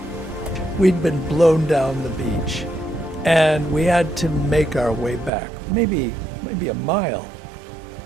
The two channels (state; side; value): drops out; left; at 5.3 s